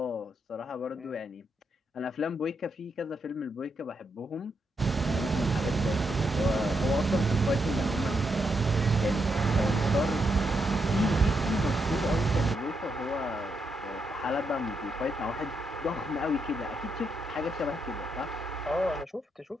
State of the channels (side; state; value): both; normal; correlation 0.81